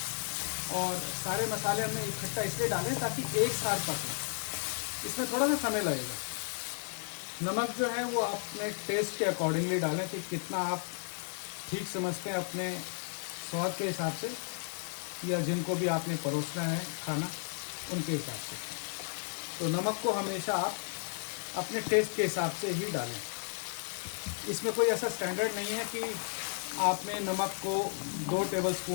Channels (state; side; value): silent; right; 55 dB below the other